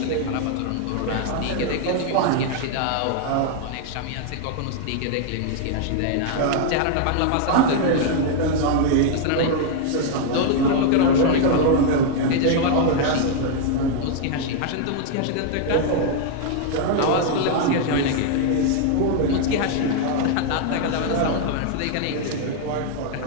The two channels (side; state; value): both; different; correlation 0.00